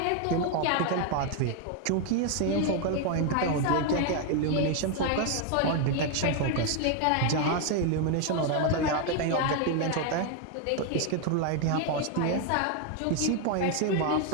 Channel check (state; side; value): different; both; correlation 0.01